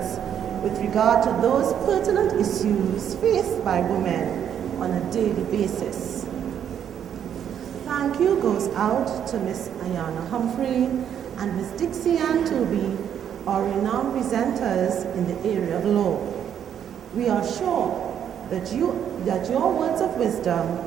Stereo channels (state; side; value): quieter; left; 9.1 dB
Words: with regard to those pertinent issues faced by women on a daily basis. Thank you goes out to Miss Ayana Humphrey and Miss Dixie Ann Toby, our renowned presenters in the area of law. We are sure that your words of wisdom